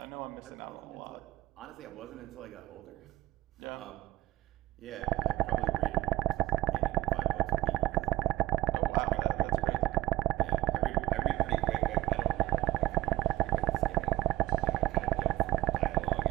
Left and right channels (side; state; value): left; quieter; 17.5 dB